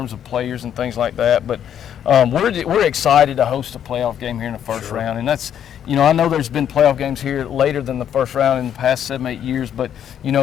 of players and things like that. But we're excited to host a playoff game here in the first round, and that's I know there's been playoff games here later than the first round in the past 7-8 years, but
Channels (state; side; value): quieter; right; 9.5 dB